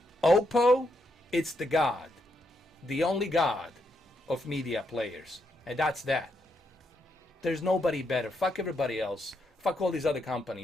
Oppo, it's the god. The only god of media players. And that's that. There's nobody better. Fuck everybody else. Fuck all these other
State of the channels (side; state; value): both; normal; correlation 0.79